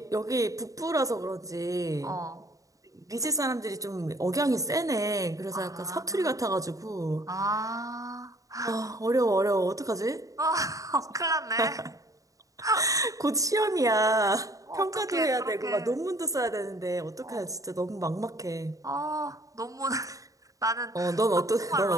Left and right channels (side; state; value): left; late; 0.16 ms